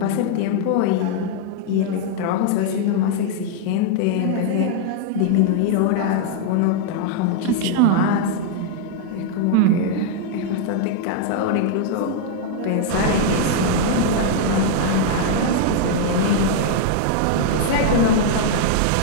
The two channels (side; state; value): both; different; correlation 0.00